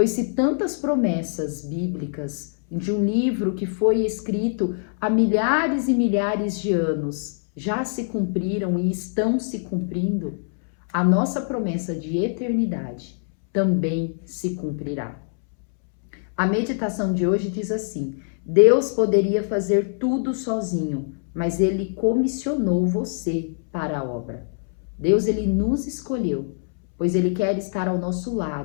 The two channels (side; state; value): right; silent; 63 dB below the other